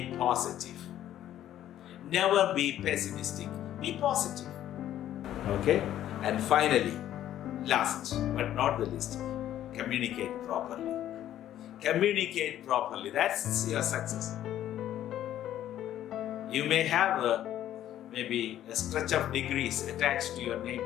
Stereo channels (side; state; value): right; quieter; 12.0 dB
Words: positive. Never be pessimistic. Be positive. Okay? And finally, last but not the least, communicate properly. Communicate properly. That's your success. You may have maybe a stretch of degrees attached to your name,